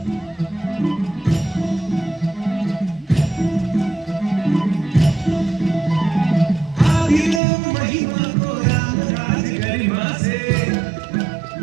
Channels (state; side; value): drops out; left; at 7.4 s